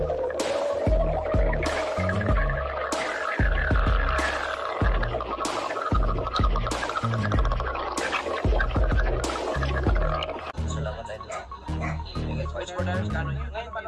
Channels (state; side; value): identical; both; correlation 1.00